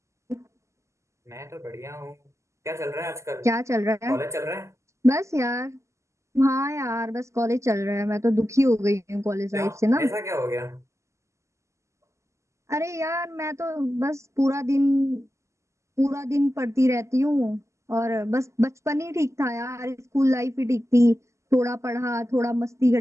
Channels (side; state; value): left; late; 0.14 ms